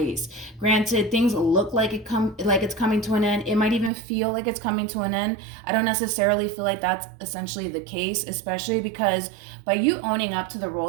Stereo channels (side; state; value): left; drops out; at 3.9 s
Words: Granted, things look like it's coming to an end. It might even feel like it's coming to an end. I don't necessarily feel like that's essentially the case, especially because by you owning up to the